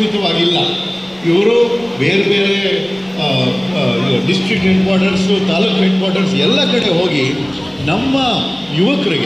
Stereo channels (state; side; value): noise; right; rumble, 26 dB below the sound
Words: ಇವರು ಬೇರೆ ಬೇರೆ district head quarters, taluk head quarters ಎಲ್ಲ ಕಡೆ ಹೋಗಿ ನಮ್ಮ